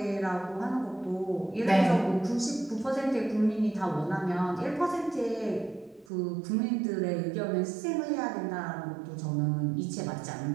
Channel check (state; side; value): drops out; left; at 6.1 s